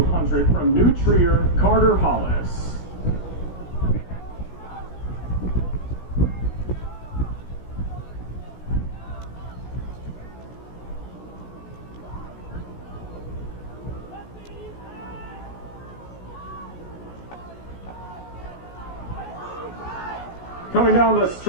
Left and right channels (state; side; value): late; right; 16 ms